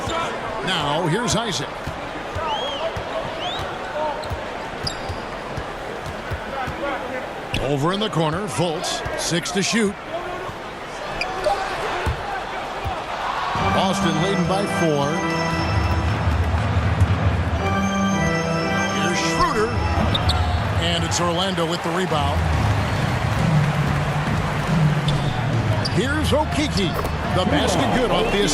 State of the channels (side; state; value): both; identical; correlation 1.00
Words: Now here's Isaac. Over in the corner, Fultz, 6 to shoot. Boston leading by 4. Here's Schroeder. And it's Orlando with the rebound. Here's Okeke. The basket good off the